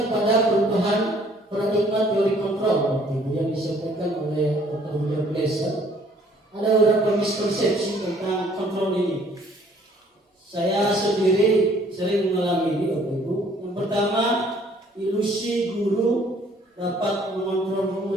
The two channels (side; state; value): both; normal; correlation 0.59